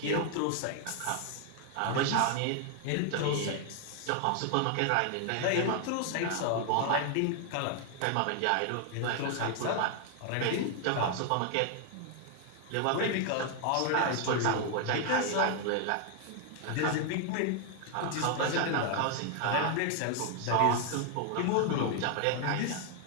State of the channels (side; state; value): both; different; correlation 0.00